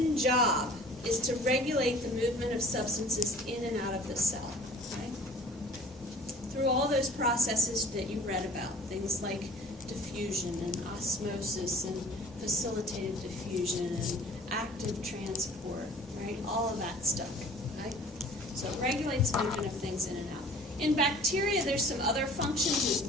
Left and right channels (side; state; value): both; normal; correlation 0.47